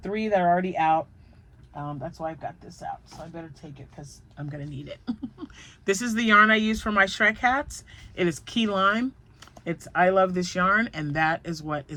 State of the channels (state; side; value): identical; both; correlation 1.00